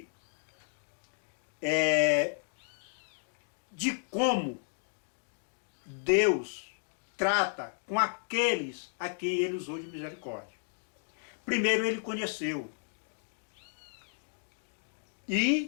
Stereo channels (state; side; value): silent; right; digital silence